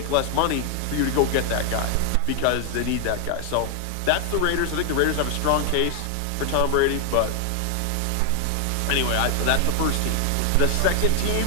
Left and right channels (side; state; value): both; different; correlation 0.00